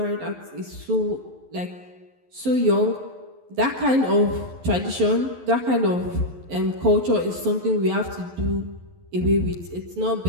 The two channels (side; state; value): left; late; 11 ms